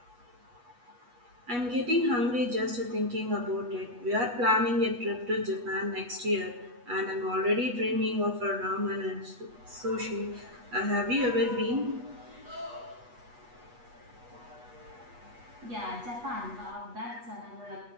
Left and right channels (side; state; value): left; late; 8.2 ms